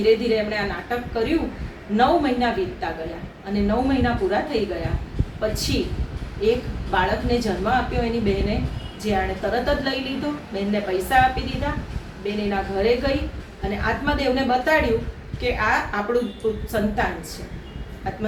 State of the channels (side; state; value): both; identical; correlation 1.00